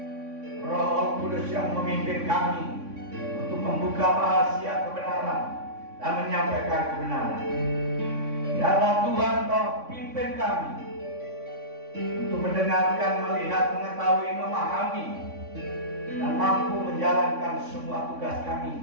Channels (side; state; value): left; late; 3.6 ms